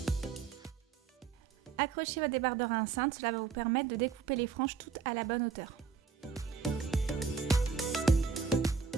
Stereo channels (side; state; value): left; quieter; 5.9 dB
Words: Accrochez votre débardeur à un cintre, cela va vous permettre de découper les franges toutes à la bonne hauteur.